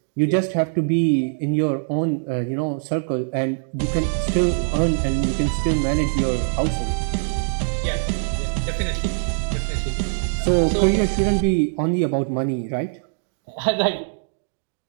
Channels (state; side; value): silent; left; digital silence